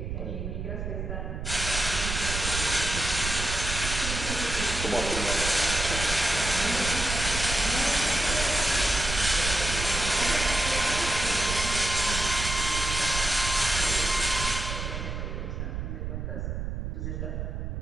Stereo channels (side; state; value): right; noise; rumble, 4 dB below the sound